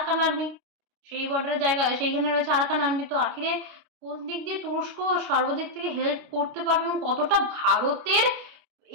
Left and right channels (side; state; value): left; late; 29 ms